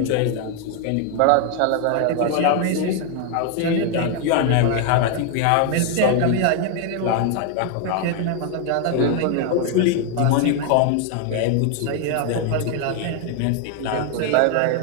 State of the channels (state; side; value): different; both; correlation 0.00